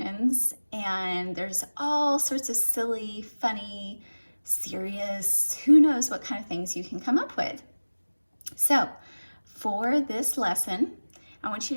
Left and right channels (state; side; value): inverted; both; correlation -1.00